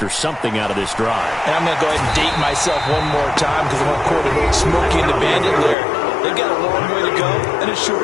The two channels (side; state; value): right; drops out; at 5.8 s